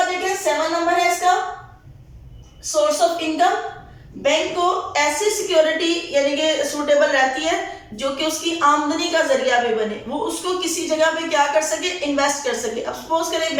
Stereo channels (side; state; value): both; identical; correlation 1.00